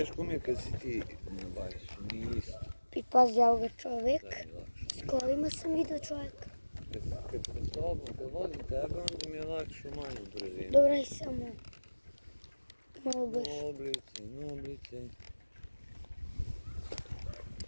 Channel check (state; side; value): inverted; both; correlation -1.00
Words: mi je kad si ti na bajsu, nije isto. I pazi ovoga čovjek. Da mi je lakše. S kolima sam vidio čovjeka. Kad sam s tobom, kad vodim tebe, onda mi je lakše u manju brzinu. Dobro je samo malo brže. Noblice.